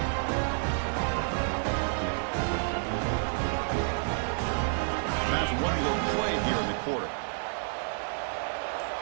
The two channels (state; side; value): silent; left; 58 dB below the other